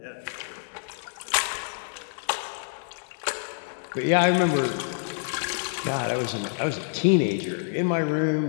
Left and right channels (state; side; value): silent; right; digital silence